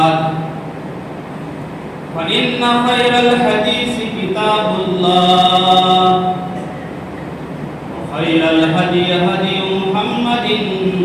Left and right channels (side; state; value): both; identical; correlation 1.00